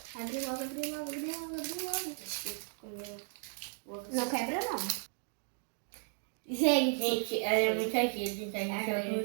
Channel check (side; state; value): left; silent; 54 dB below the other